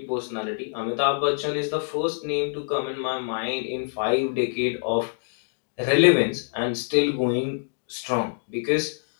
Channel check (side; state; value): right; silent; digital silence